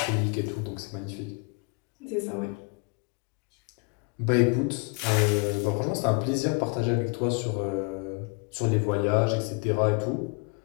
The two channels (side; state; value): right; quieter; 32.2 dB